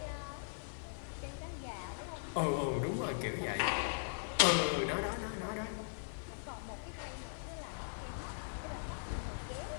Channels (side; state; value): right; silent; digital silence